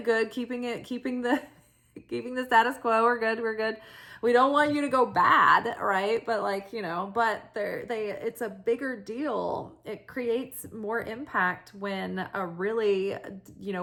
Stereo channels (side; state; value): both; identical; correlation 1.00